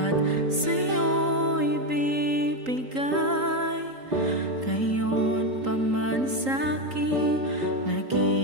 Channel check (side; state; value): left; late; 3.8 ms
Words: sa'yo ibibigay. Ngayon pa man sa'kin,